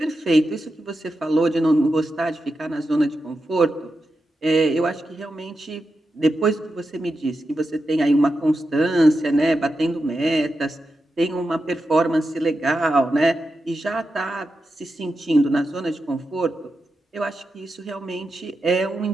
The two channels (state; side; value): normal; both; correlation 0.89